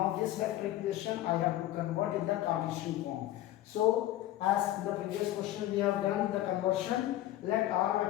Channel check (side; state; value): right; quieter; 14.3 dB